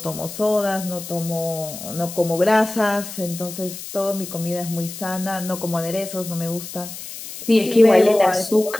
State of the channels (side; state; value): left; noise; hiss, 11 dB below the sound